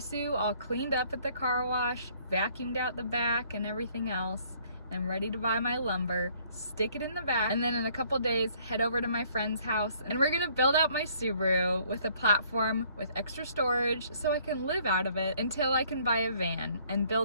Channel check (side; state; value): both; inverted; correlation -0.61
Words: all cleaned up at the car wash, vacuumed out the back and everything else. I'm ready to buy my lumber, stick it in the back, and then in a couple days head over to my friend's house and we're gonna build out my Subaru with a platform with extra storage so I can live out of it until I can buy a van and